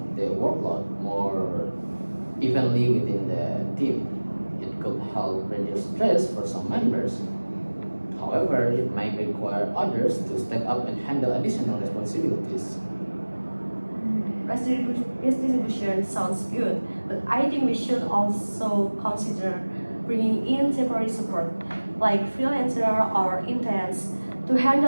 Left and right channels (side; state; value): both; inverted; correlation -1.00